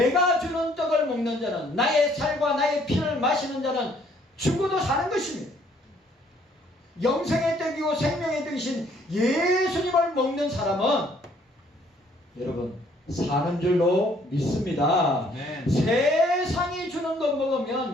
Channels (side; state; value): both; normal; correlation 0.63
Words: 주는 떡을 먹는 자는 나의 살과 나의 피를 마시는 자는 죽어도 사는 것입니다. 영생의 떡이고 생명의 떡이신 예수님을 먹는 사람은 여러분 사는 줄로 믿습니다. 네. 세상이 주는 것